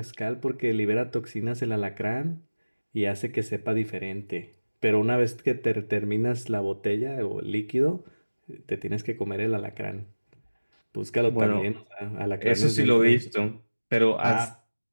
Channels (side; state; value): both; inverted; correlation -1.00